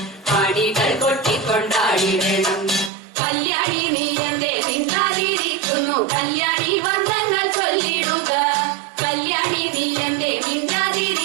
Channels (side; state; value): left; drops out; at 2.9 s